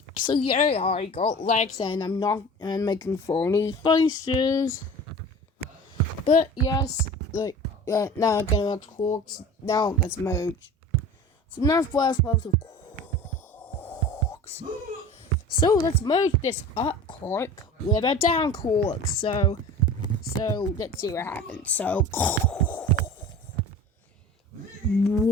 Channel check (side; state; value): both; normal; correlation 0.38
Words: got legs and I'm not making funny faces. But yes, now I'm gonna have quarks. Now let's merge. So now first level of quarks. So let's merge this up quark with a down quark. So let's see what happens. So